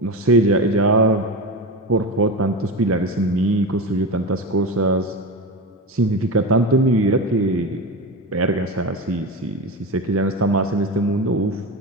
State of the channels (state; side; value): normal; both; correlation 0.22